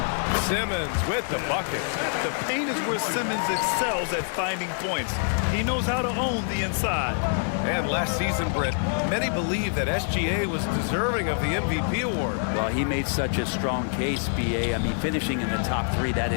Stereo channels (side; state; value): right; silent; digital silence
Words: Simmons with the bucket. The paint is where Simmons excels at finding points. He knows how to own the inside. And last season, Britt, many believe that SGA was deserving of the MVP award. Well, he made such a strong case, BA. I mean, finishing in the top 3, that